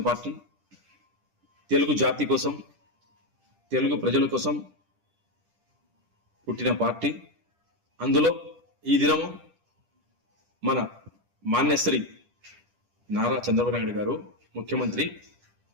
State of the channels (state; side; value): late; left; 10 ms